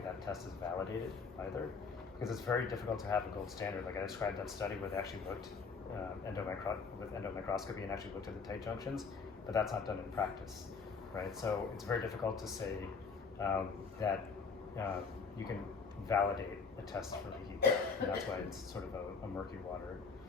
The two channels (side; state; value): right; quieter; 5.1 dB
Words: test is validated either. Because it's very difficult to have a gold standard. Like I described that study where they actually looked with endomicroscopy and actually looked at the tight junctions, but that's not done in practice, right? So it's very difficult to say that you can validate a test for leaky gut, and that's why it's sort of a murky water.